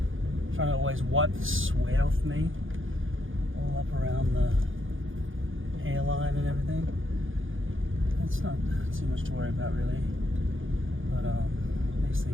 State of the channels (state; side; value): late; left; 0.58 ms